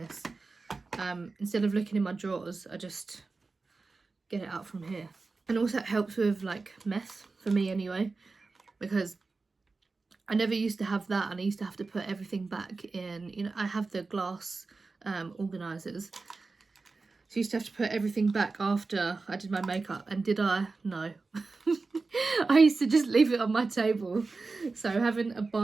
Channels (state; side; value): quieter; left; 3.9 dB